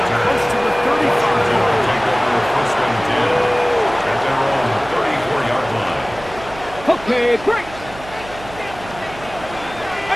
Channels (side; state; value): right; noise; hum, 16 dB below the sound